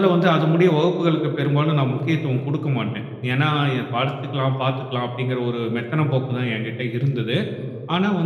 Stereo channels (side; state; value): both; identical; correlation 1.00